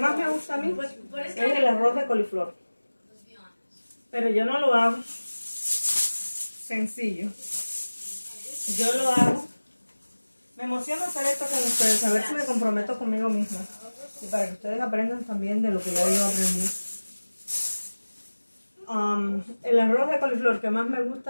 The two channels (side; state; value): both; inverted; correlation -1.00